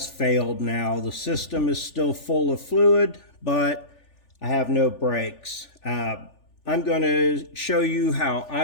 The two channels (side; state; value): right; late; 3.4 ms